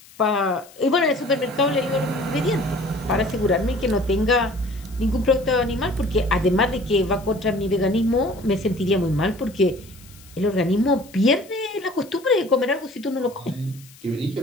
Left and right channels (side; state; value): left; noise; hiss, 23 dB below the sound